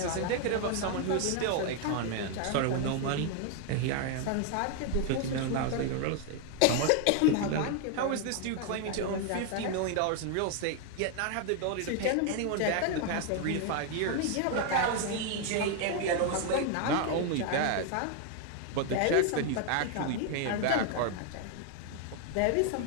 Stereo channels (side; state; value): both; different; correlation 0.00